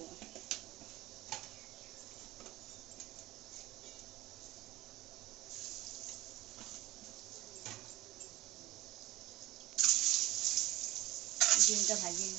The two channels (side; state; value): left; quieter; 17.4 dB